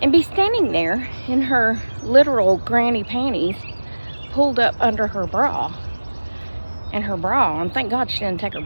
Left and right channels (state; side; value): inverted; both; correlation -1.00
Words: and be standing there in her literal granny panties pulled up under her bra. And her bra, and thank God she didn't take her